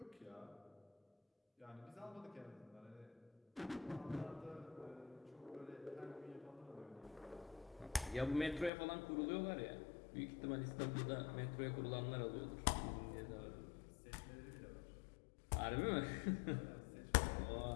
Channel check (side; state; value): right; drops out; at 8.7 s